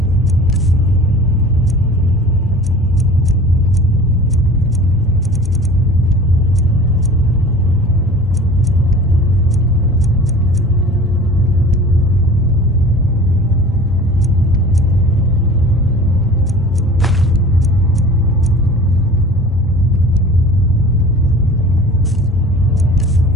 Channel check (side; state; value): both; normal; correlation 0.42